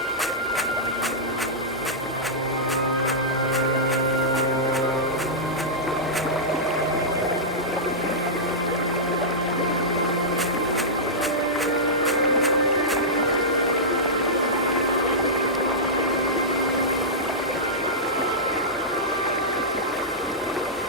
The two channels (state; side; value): noise; right; hum, 24 dB below the sound